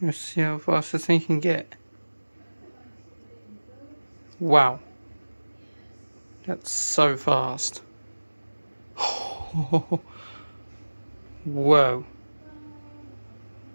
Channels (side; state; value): both; inverted; correlation -1.00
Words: Let's see how fast this thing can get. Wow. That's so fast. Whoa.